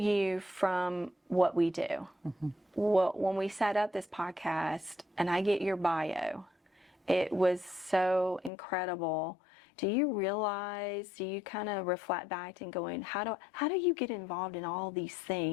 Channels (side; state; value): right; drops out; at 8.5 s